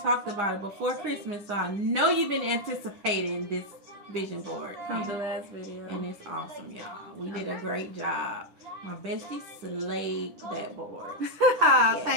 about it before Christmas, so I know you've been anticipating this vision board. From the last video. And it's awesome, y'all. We did a great job. My bestie slayed that board. Yes.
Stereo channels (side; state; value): left; late; 10 ms